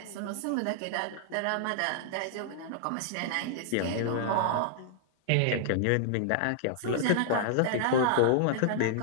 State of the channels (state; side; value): different; both; correlation -0.01